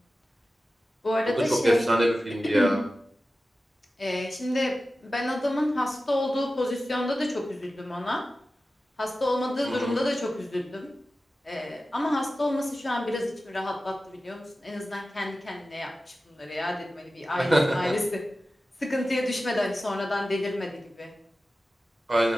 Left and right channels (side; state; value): both; normal; correlation 0.94